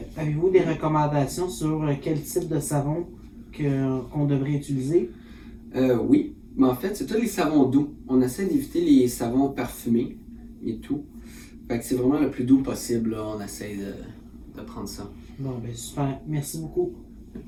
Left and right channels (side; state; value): both; identical; correlation 1.00